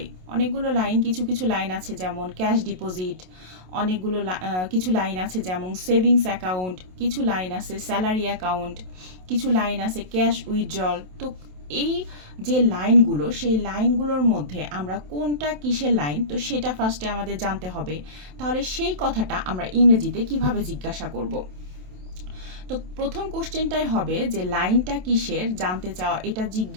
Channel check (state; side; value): late; left; 27 ms